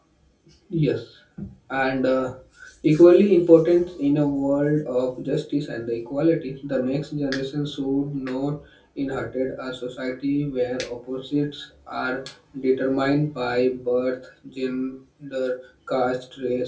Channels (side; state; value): both; identical; correlation 1.00